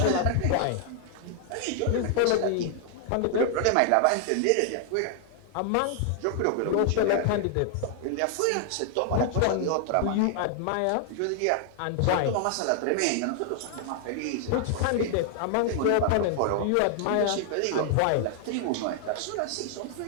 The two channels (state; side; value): different; both; correlation 0.00